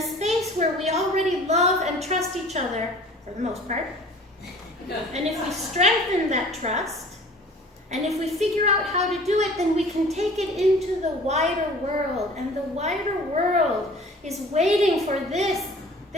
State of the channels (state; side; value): normal; both; correlation 0.47